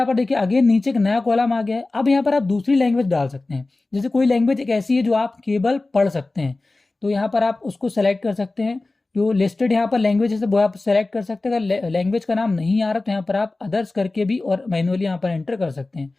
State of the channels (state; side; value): quieter; right; 3.2 dB